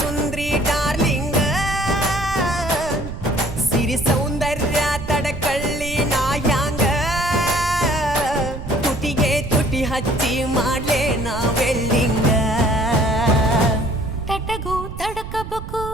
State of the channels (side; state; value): right; noise; rumble, 9 dB below the sound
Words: ಡಾರ್ಲಿಂಗ ಸಿರಿ ಸೌಂದರ್ಯ ತಡಕಳ್ಳಿ ನಾಯಾಂಗ ತುಟಿಗೆ ತುಟಿ ಹಚ್ಚಿ ಮಾಡ್ಲೇ ನಾ ವೆಲ್ಡಿಂಗ ತಟಗೂ ತಡಕಬೇಕು